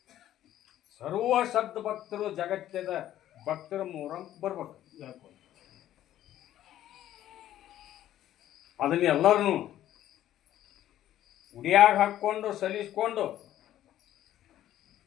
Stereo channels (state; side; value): quieter; right; 12.5 dB